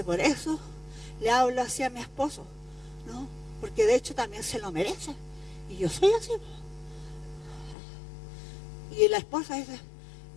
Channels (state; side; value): drops out; right; at 7.8 s